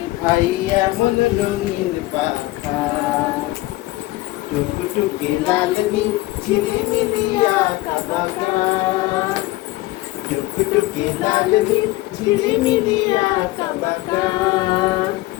ভাই এমন রঙিন পাখা? টুকটুকে লাল নীল ঝিলিমিলি আঁকা বাঁকা, টুকটুকে লাল নীল ঝিলিমিলি আঁকা বাঁকা।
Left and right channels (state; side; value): quieter; right; 18.7 dB